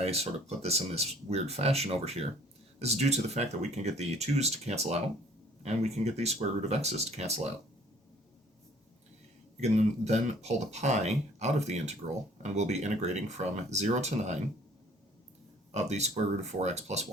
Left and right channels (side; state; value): both; normal; correlation 0.56